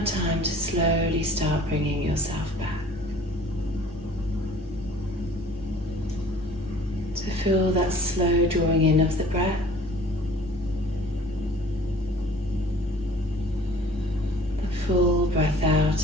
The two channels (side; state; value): both; normal; correlation 0.50